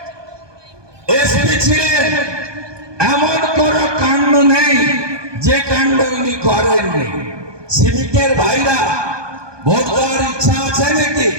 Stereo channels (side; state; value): left; late; 1.2 ms